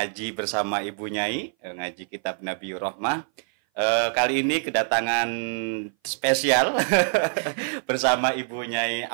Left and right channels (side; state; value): left; silent; 58 dB below the other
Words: bersama Ibu Nyai, ngaji kitab Nabiyur Rahmah. Kali ini kedatangan spesial bersama Ibu Nyai